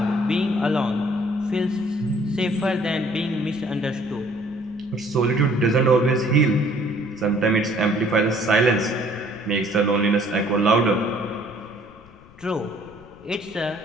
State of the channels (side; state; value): left; noise; rumble, 24 dB below the sound